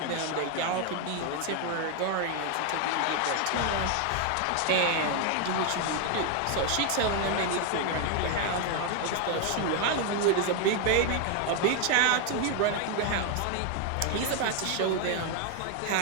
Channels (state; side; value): different; both; correlation 0.01